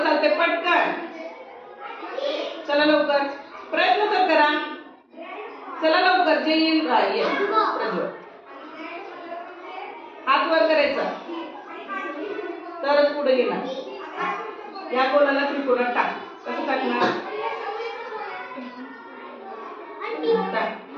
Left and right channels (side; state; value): both; identical; correlation 1.00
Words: चालते? पटकन चला लवकर प्रयत्न तर करा. चला लवकर जे येईल हात वर करायचा तरच पुढे येणार. या गोलाला त्रिकोणात टाक. कसं टाकणार?